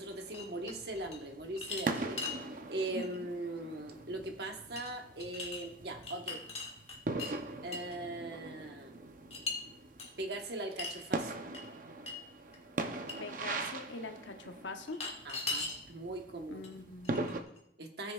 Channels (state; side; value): normal; both; correlation 0.23